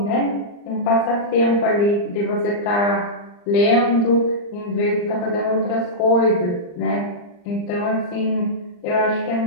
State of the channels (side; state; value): right; late; 39 ms